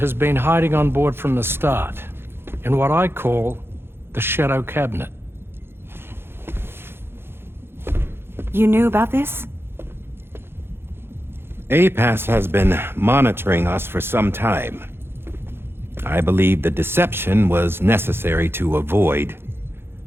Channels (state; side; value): late; left; 0.11 ms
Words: been hiding on board from the start. in what I call the Shadow Cabinet. You knew about this? APAS has been monitoring us for some time. I believe the deception was necessary to avoid